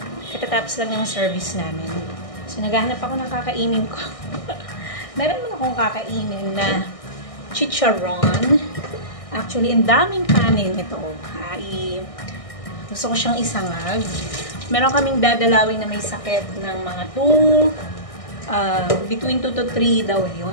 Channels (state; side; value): late; right; 1.6 ms